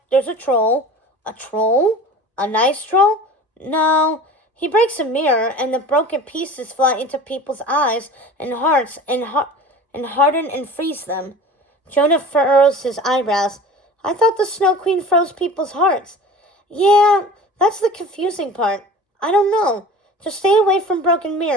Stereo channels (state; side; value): normal; both; correlation 0.39